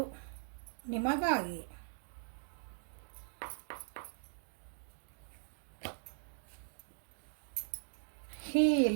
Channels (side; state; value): left; silent; digital silence